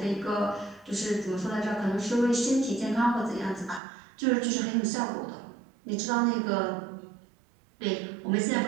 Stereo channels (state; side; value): drops out; left; at 3.8 s